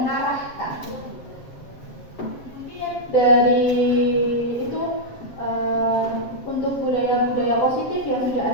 Mungkin dari itu untuk budaya-budaya positif yang sudah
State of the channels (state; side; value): late; right; 7.6 ms